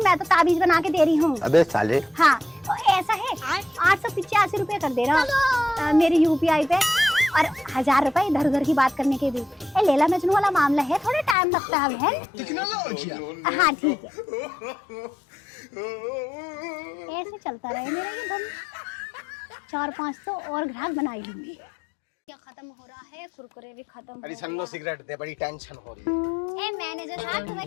तो ताबीज बना के दे रही हूँ। अबे साले। हाँ तो ऐसा है, 885 रुपए कर दे रहा मेरी यूपीआई पे, और 1000 रुपए इधर उधर की बात करने के भी। लैला मजनू वाला मामला है, थोड़ा टाइम लगता है बहन। हाँ ठीक है, ऐसे चलता रहे मेरा ये धन। 4-5 तो और ग्राहक बनाई लूंगी। क्या खत्म हो रहा है, कुरकुरे भी खत्म। अरे सन्नो सिगरेट दे, बड़ी टेंशन हो रही है। ए मैनेजर साहब, तुम्हें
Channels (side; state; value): right; drops out; at 11.4 s